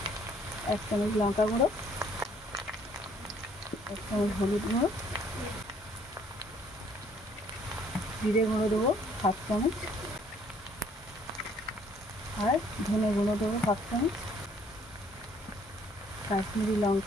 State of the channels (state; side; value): normal; both; correlation 0.62